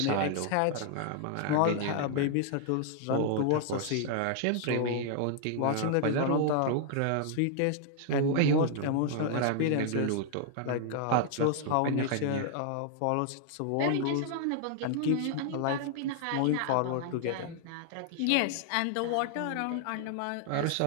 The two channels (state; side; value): different; both; correlation -0.01